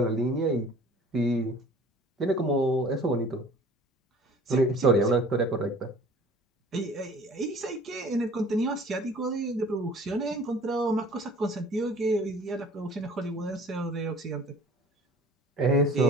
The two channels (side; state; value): both; normal; correlation 0.48